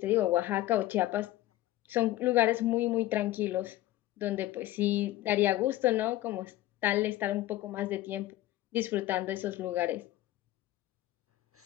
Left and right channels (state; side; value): quieter; right; 15.7 dB